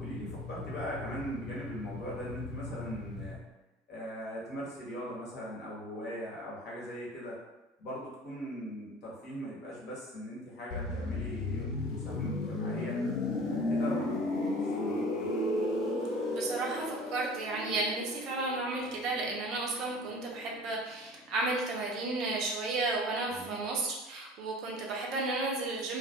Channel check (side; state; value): both; normal; correlation 0.42